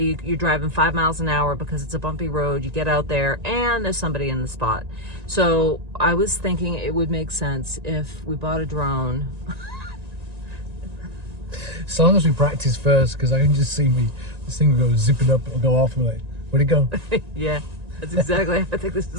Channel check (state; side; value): late; left; 1.9 ms